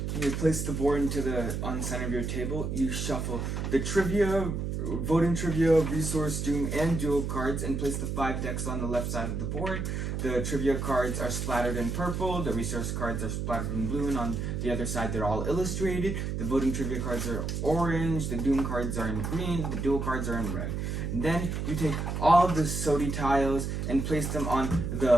you place the board on the center of your table. You shuffle the trivia, voting trivia, resource, doom, and duel cards and place the 5 decks on the left side of the board. The trivia cards are splattered in purple, the resource cards are splattered in blue, and on the other side they're all illustrated. The voting trivia cards are orange, the doom cards are in green, the duel cards are in red. Then you take all of the SOTI tiles and place them on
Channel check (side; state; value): right; noise; hum, 2 dB below the sound